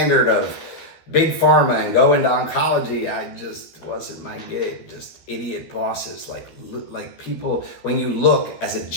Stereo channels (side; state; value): right; late; 13 ms